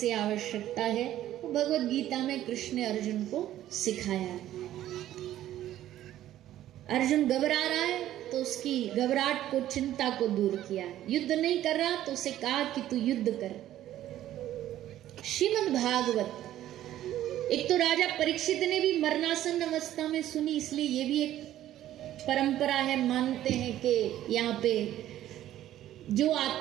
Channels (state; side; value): quieter; left; 12.9 dB